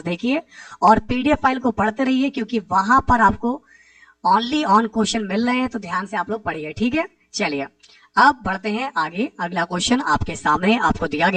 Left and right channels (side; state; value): both; identical; correlation 1.00